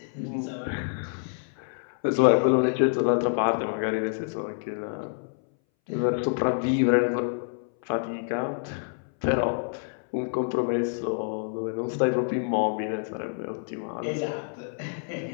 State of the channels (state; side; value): silent; right; 60 dB below the other